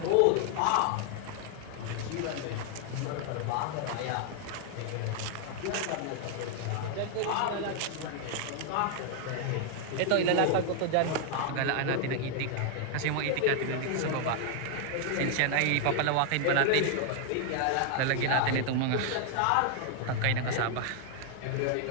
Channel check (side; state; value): both; different; correlation 0.00